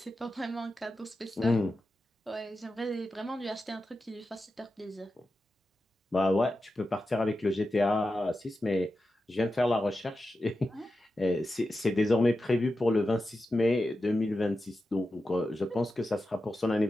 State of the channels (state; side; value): normal; both; correlation 0.91